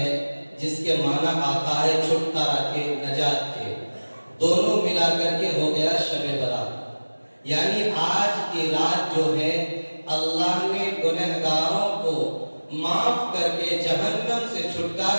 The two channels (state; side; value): inverted; both; correlation -1.00